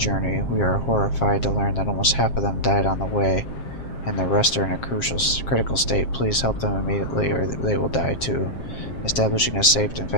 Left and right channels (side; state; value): right; late; 7.5 ms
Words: We are horrified to learn that almost half of them died on the way, and the rest are in a critical state. Please help them immediately or they will die too. Establishing a safe and